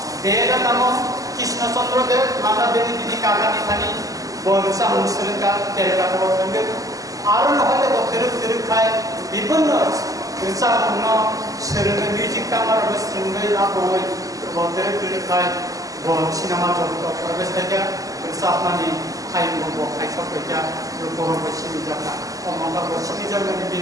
দেব নামক কৃষ্ণচন্দ্র দেব মান্নাদেবী তিনি কাকা নিখানি বরসা মুসলিমকা তেরকা বলতেন আরো নহলে গোরো খায় বিভিন্ন রসাপূর্ণ সেরনে মিউজিক কামার বস্ত্রঙ্গই আপই গোরো খায় সিনেমা জগত প্রবেশ থেকে রসাপনানি খাইবো খাইসকা বড় বসিনি জায়গা অমঙ্গল বসিনি জায়গানি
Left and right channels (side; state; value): left; late; 0.17 ms